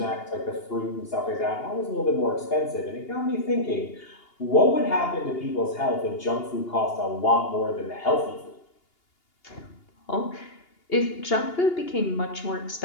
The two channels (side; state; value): right; late; 2.8 ms